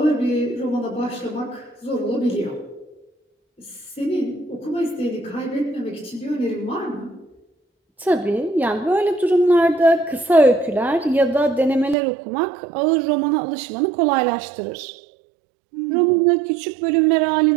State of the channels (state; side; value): drops out; left; at 12.0 s